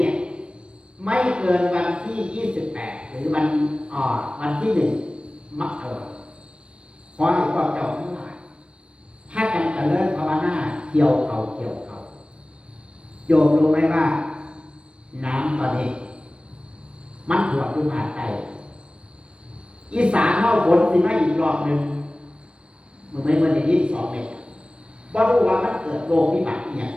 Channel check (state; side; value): late; left; 0.057 ms